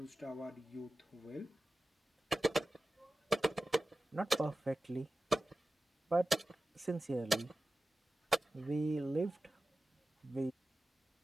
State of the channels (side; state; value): both; normal; correlation 0.94